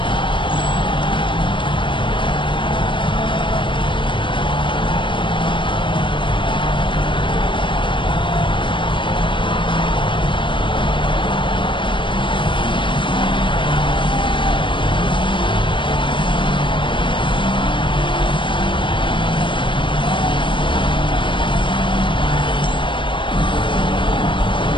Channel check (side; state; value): right; late; 0.24 ms